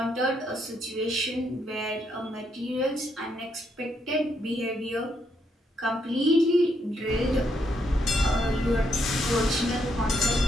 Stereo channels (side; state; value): both; normal; correlation 0.76